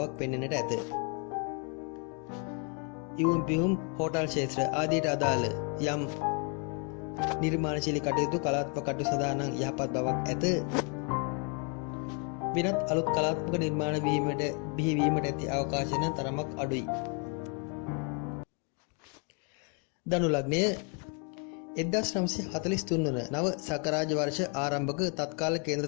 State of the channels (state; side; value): quieter; right; 37.9 dB